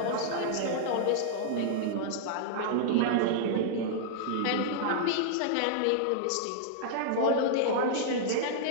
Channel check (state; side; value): different; both; correlation -0.01